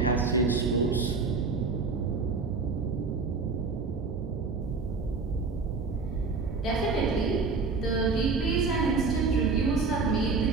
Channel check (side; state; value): left; quieter; 4.4 dB